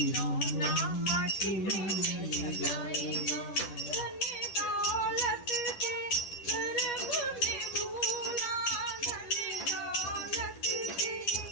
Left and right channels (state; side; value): late; right; 10 ms